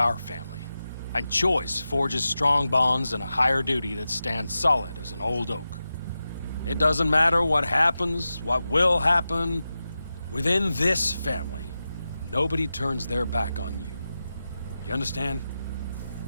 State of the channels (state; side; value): inverted; both; correlation -0.92